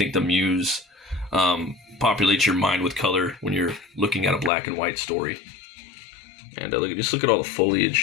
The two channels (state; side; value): drops out; right; at 4.5 s